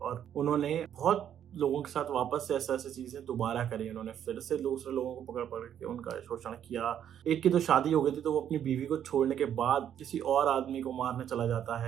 उन्होंने बहुत लोगों के साथ वापस से ऐसे ऐसे चीजें दोबारा करी। उन्होंने फिर से दूसरे लोगों को पकड़ पकड़ के उनका शोषण किया। एक की तो शादी हो गई थी तो वो अपनी बीवी को छोड़ने के बाद किसी और आदमी को मारने चला जाता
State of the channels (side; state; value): left; quieter; 9.7 dB